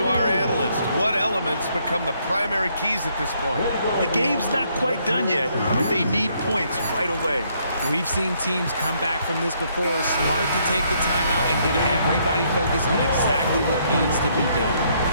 our analyst. What elements become the primary keys at this point? The game's not quite done yet, but they need points right away. We've seen teams come back from this before. Smart to take the timeout and get everybody focused on exactly what needs to be done.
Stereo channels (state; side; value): inverted; both; correlation -0.70